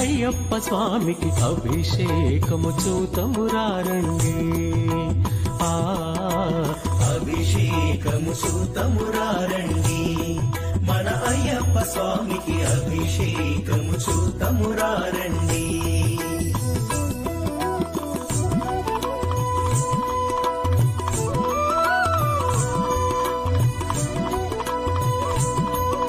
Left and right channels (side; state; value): both; identical; correlation 1.00